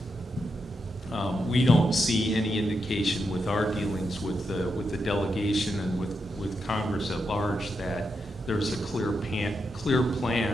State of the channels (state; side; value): normal; both; correlation 0.84